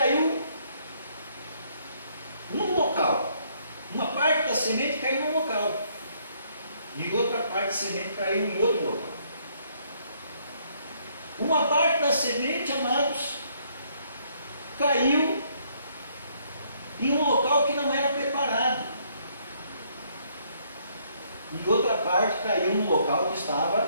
num local, uma parte da semente caiu num local, e outra parte da semente caiu em outro local. Uma parte da semente, amados, caiu em um local que não era preparado, e outra parte caiu num local que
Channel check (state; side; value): inverted; both; correlation -0.68